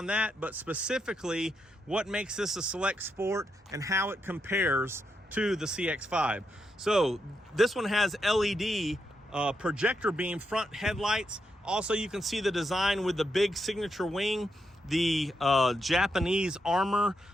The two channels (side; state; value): both; normal; correlation 0.82